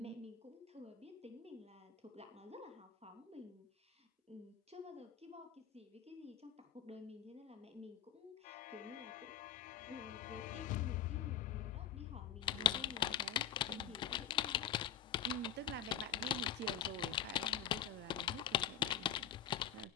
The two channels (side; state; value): right; quieter; 9.0 dB